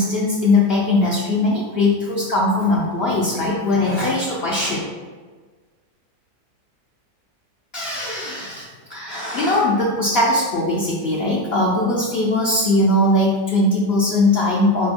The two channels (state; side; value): normal; both; correlation 0.19